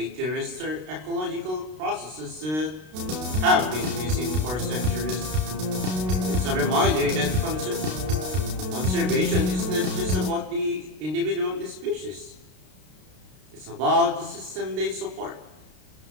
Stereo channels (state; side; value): late; left; 32 ms